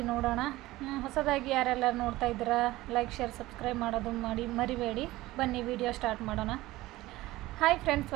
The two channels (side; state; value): left; quieter; 18.0 dB